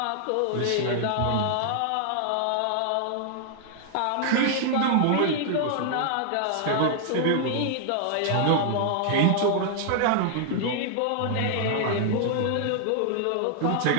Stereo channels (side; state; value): both; different; correlation 0.00